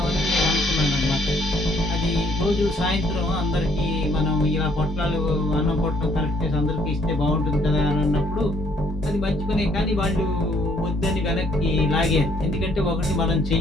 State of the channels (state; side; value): normal; both; correlation 0.66